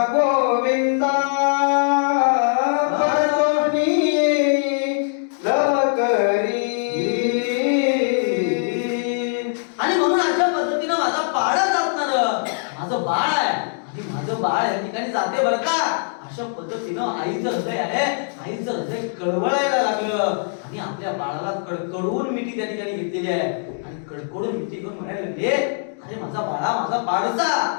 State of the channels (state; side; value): silent; right; digital silence